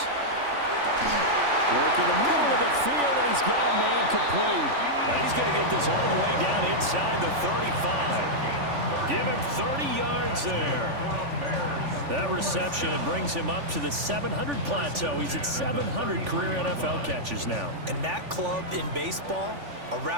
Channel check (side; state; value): left; late; 3.5 ms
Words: Work in the middle of the field, and he's got a man complete. And he's going to get this all the way down inside the 35. Give him 30 yards there. That reception, it brings him up to the 700 plateau. He's at 700 career NFL catches now. And that club in baseball, a